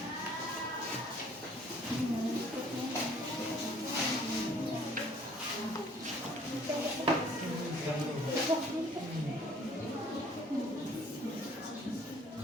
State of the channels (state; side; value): normal; both; correlation 0.57